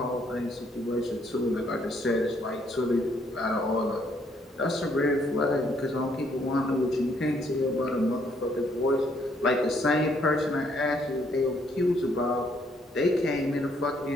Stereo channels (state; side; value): normal; both; correlation 0.69